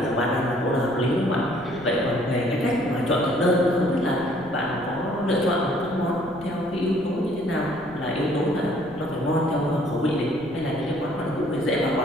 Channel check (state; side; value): noise; left; rumble, 20 dB below the sound